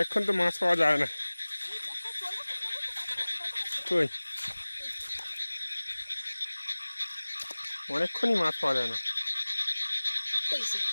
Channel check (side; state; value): both; inverted; correlation -1.00